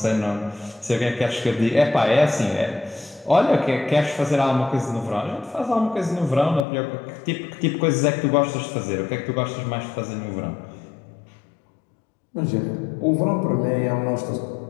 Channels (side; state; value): right; drops out; at 6.7 s